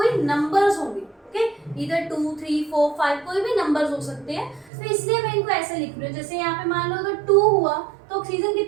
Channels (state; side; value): drops out; left; at 4.7 s